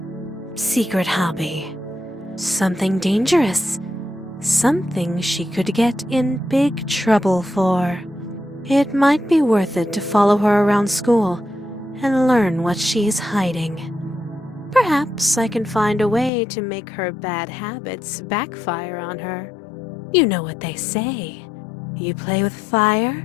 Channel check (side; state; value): right; drops out; at 16.3 s